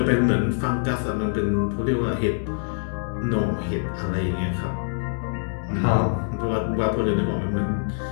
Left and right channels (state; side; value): silent; right; digital silence